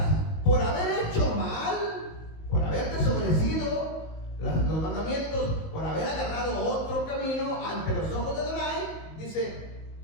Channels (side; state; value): right; late; 19 ms